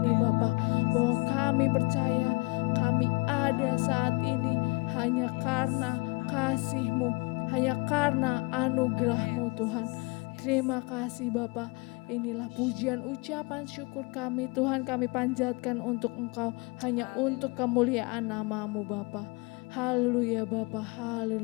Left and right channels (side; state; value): right; quieter; 27.4 dB